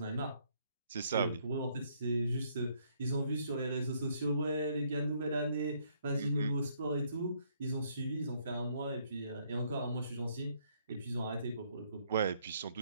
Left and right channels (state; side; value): inverted; both; correlation -0.69